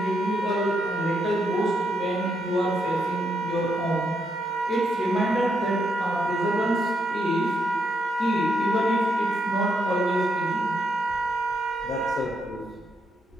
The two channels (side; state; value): both; normal; correlation 0.79